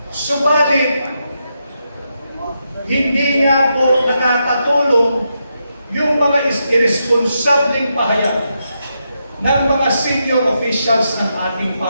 Subalit, hindi nga po nakakatulong yung mga irresponsableng pahayag ng mga senior officials ng ating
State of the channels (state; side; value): inverted; both; correlation -0.84